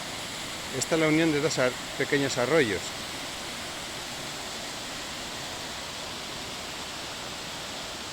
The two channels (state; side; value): identical; both; correlation 1.00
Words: Esta es la unión de dos pequeños arroyos.